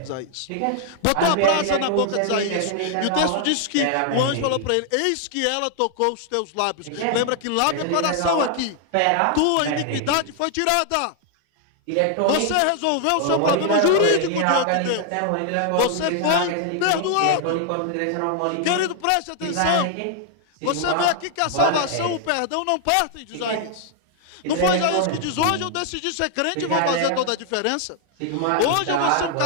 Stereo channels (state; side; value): different; both; correlation 0.00